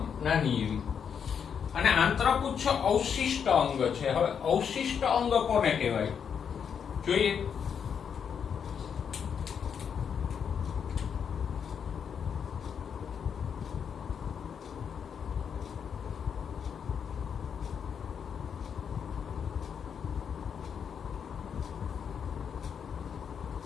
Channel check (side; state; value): right; quieter; 7.3 dB